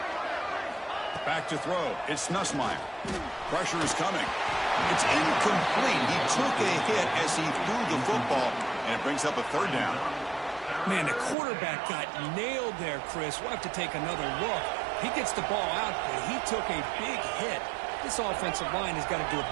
Back to throw. It's Nussmeier. Pressure is coming. It's incomplete. He took a hit as he threw the football, and it brings up a third down. Man, the quarterback got nailed there, Chris. We'll have to take another look. He gets the ball out, but he took a big hit. This offensive line has got to do a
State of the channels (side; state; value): left; drops out; at 11.4 s